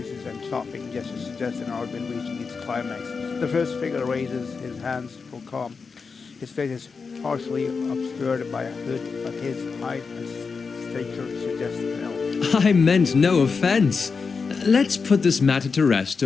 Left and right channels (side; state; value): right; quieter; 5.0 dB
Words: and chopping gestures suggest an argument reaching its climax. The first figure raises his hands for calm. His face is partially obscured by a hood, but his height and stature suggest an elf. I meant no offense. Let's put this matter to rest